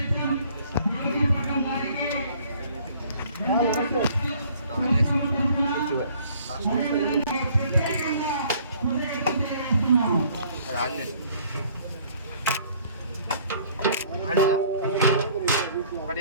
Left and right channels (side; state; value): both; inverted; correlation -0.57